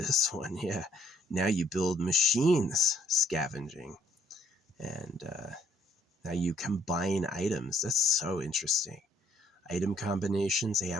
one. Yeah. Now you build machines scavenging. And now you combine items. That's so interesting. Item combinations. Hey,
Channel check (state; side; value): normal; both; correlation 0.66